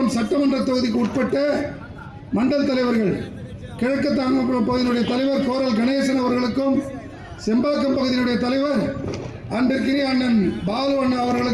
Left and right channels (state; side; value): identical; both; correlation 1.00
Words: சட்டமன்ற தொகுதிக்கு உட்பட்ட மண்டல் தலைவர்கள், கிழக்கு தாம்பரம் பகுதியினுடைய தலைவர் கோரல் கணேசன் அவர்களுக்கும், செம்பாக்கம் பகுதியினுடைய தலைவர் அன்பிற்கினிய அண்ணன் பாலு அண்ணா